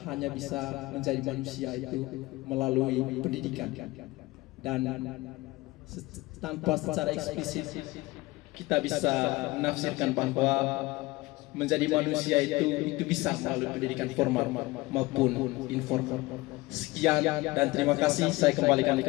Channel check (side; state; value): right; quieter; 21.2 dB